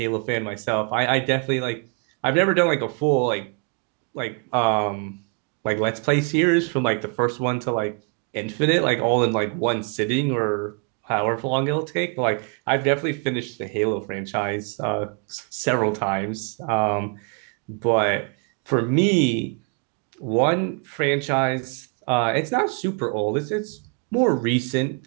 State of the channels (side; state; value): left; quieter; 35.6 dB